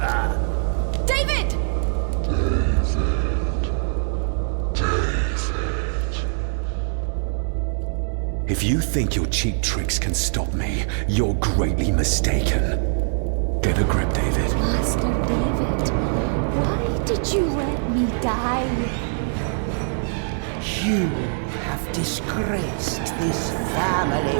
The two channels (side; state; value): left; silent; digital silence